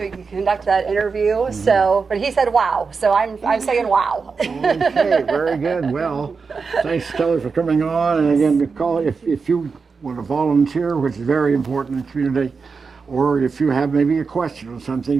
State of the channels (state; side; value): quieter; left; 5.0 dB